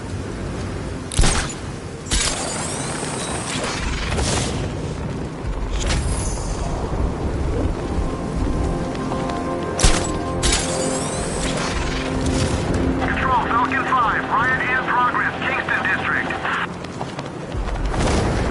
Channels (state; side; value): identical; both; correlation 1.00